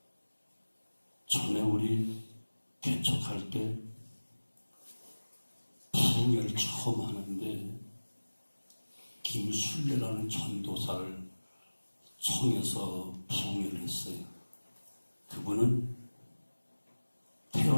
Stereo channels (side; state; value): both; inverted; correlation -1.00